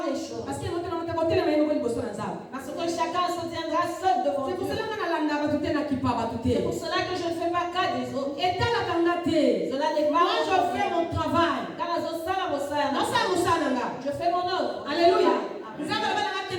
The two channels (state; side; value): identical; both; correlation 1.00